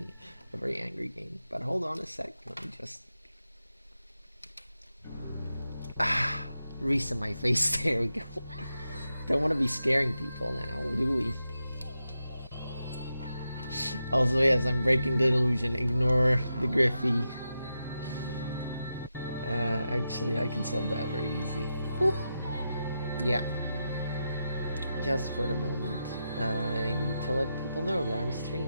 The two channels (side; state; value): both; inverted; correlation -0.88